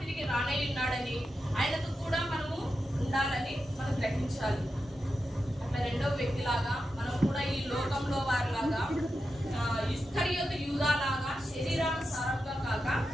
రానై ఉన్నాడని, ఆయనతో కూడా మనము ఉండాలని మనం గ్రహించాలి. అట్లా రెండో వ్యక్తిలాగా మనం కూడా ఈ లోకంలో వారిలాగా ఇస్కరియోతు యూదాలాగా శరీరానుసారంగా కాక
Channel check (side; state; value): both; normal; correlation 0.89